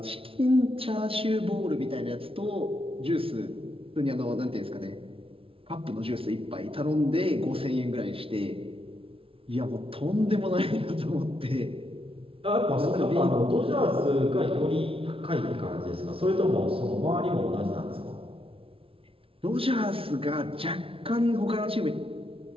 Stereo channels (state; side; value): late; left; 0.26 ms